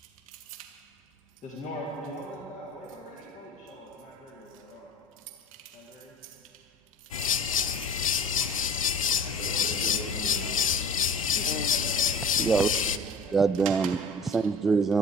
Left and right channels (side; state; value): both; normal; correlation 0.43